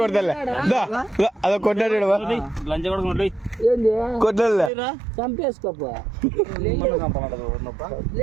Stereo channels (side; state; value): left; drops out; at 4.7 s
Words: అదో కొట్టాడు ఏంది కొట్టాడులే చంపేసుకోపో